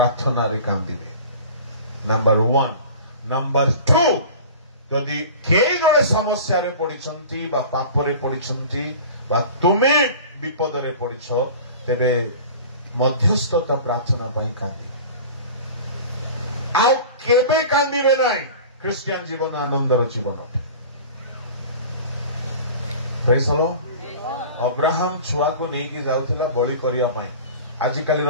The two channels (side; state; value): both; inverted; correlation -0.39